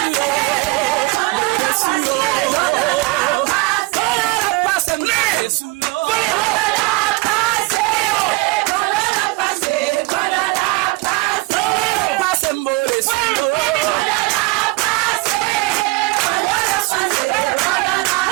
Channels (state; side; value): quieter; left; 23.7 dB